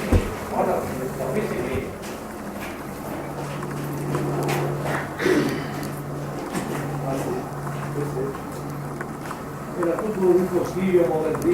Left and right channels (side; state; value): both; identical; correlation 1.00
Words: era tutto un consiglio